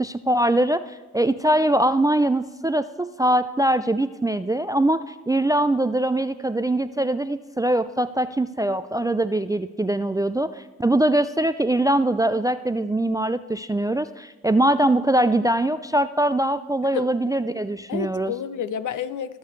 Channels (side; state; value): both; normal; correlation 0.74